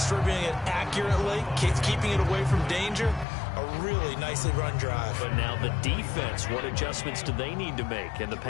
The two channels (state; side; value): drops out; right; at 3.2 s